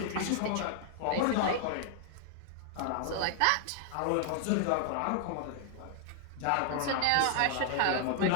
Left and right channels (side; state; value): both; different; correlation -0.01